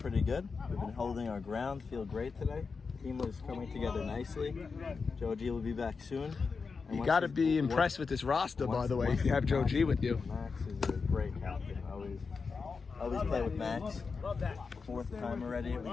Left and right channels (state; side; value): quieter; right; 4.9 dB